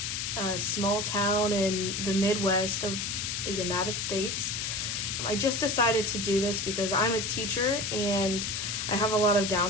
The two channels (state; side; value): noise; left; hiss, 2 dB below the sound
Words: a small town in the Midwest of the United States. I just decided to do this because I'm a teacher and I have a lot of